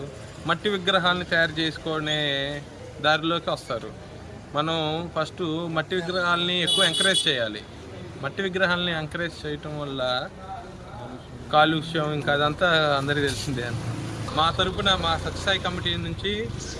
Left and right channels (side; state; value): both; identical; correlation 1.00